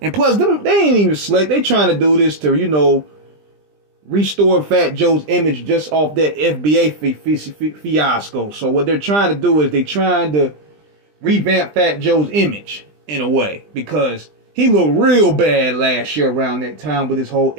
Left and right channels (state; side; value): late; left; 20 ms